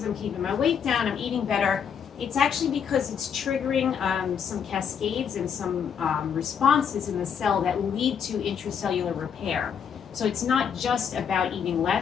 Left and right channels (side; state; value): right; quieter; 7.4 dB